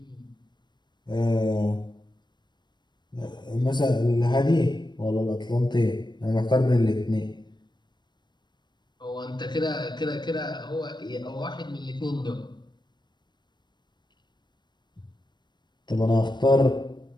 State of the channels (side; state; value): right; late; 0.22 ms